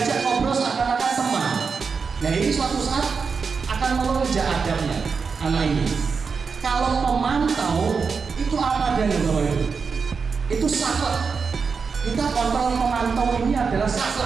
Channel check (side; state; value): left; quieter; 5.3 dB